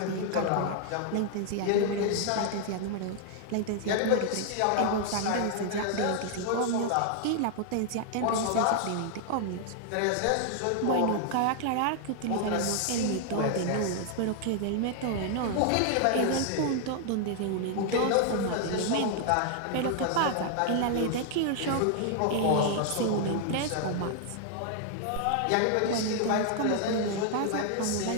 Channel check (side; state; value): both; different; correlation 0.00